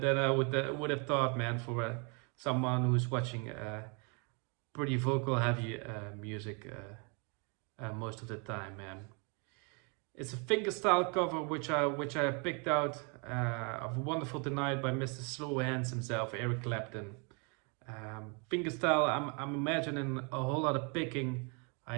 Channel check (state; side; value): quieter; left; 34.4 dB